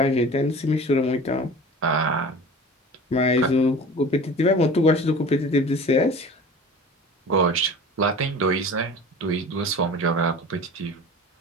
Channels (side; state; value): both; normal; correlation 0.38